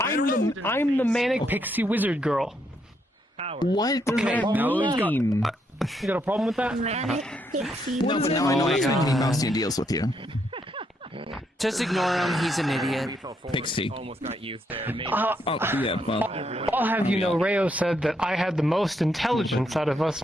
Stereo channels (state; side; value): normal; both; correlation 0.76